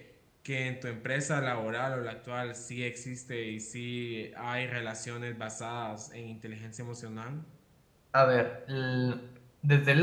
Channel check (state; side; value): identical; both; correlation 1.00